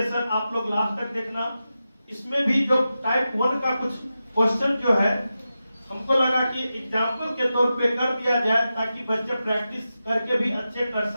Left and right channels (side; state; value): both; inverted; correlation -0.91